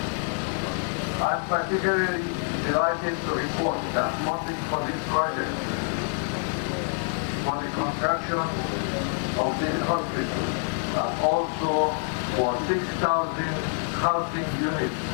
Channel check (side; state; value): right; silent; 60 dB below the other